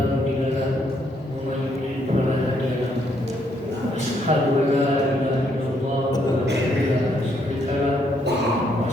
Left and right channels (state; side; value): normal; both; correlation 0.72